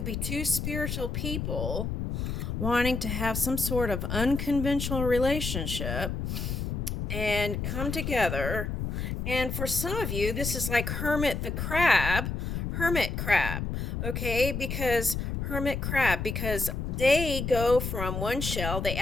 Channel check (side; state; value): left; noise; rumble, 3 dB below the sound